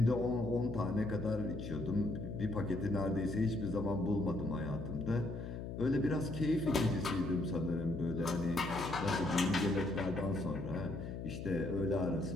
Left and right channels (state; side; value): noise; left; hum, 7 dB below the sound